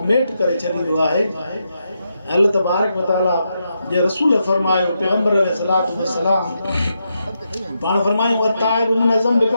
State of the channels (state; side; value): inverted; both; correlation -0.83